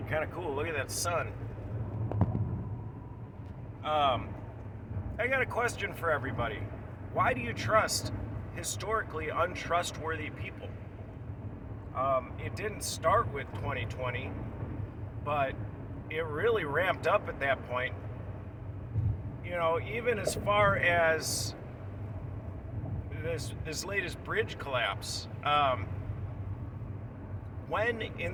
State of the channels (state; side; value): identical; both; correlation 1.00